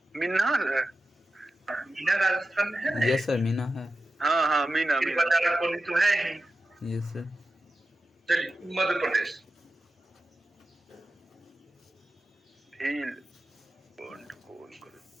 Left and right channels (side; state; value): both; normal; correlation 0.92